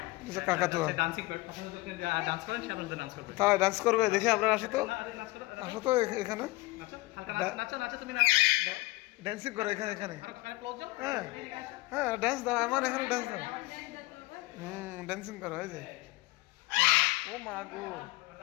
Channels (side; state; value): right; quieter; 20.7 dB